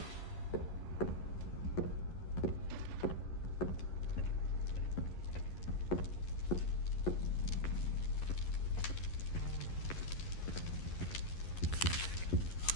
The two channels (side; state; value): right; late; 11 ms